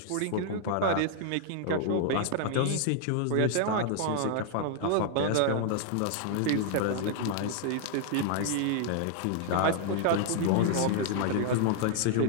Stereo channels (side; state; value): both; different; correlation 0.00